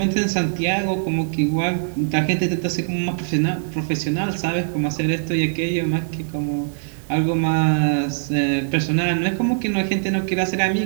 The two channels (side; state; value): left; silent; 64 dB below the other